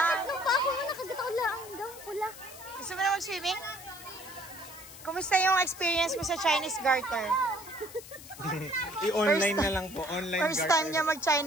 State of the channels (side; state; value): left; noise; hiss, 16 dB below the sound